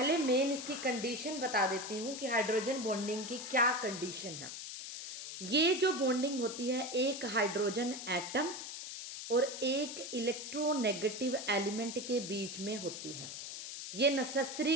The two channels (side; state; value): left; noise; hiss, 8 dB below the sound